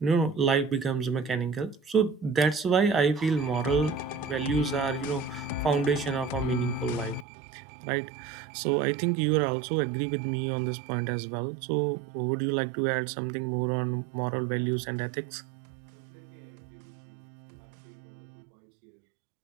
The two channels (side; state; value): left; drops out; at 7.2 s